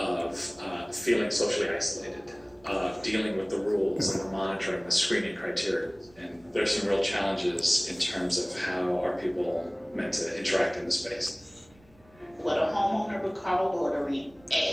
feeling socially isolated, of dealing with the rules and the monitoring, the screening criteria. And there's some real challenges in terms of how are people meant to interact in the space. What a homeowner would call loitering,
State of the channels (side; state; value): right; noise; rumble, 29 dB below the sound